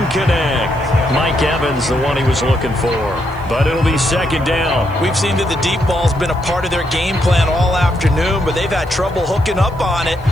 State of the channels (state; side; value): noise; right; hiss, 28 dB below the sound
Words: connect. Mike Evans, the one he was looking for. But it'll be 2nd down. We've seen that the deep ball's been a part of their game plan all afternoon, but they've had trouble hooking up on it,